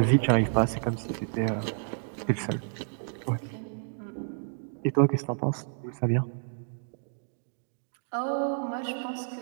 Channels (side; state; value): left; silent; digital silence